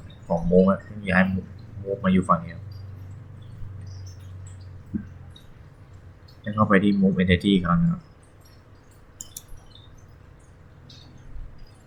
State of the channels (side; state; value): both; identical; correlation 1.00